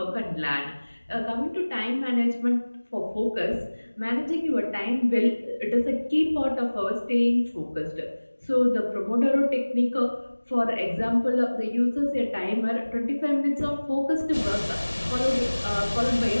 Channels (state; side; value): inverted; both; correlation -1.00